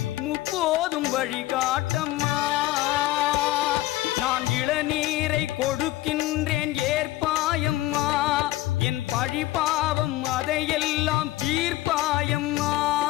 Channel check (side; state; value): right; quieter; 16.5 dB